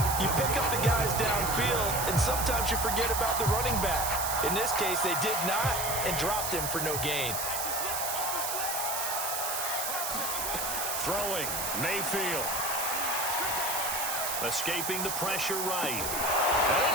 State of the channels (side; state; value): right; noise; hiss, 2 dB below the sound